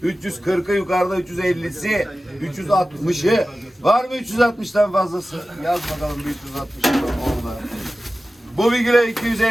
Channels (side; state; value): both; normal; correlation 0.95